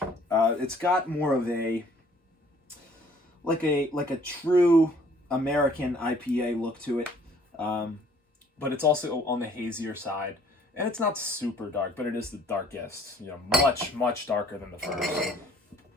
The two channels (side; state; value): both; normal; correlation 0.58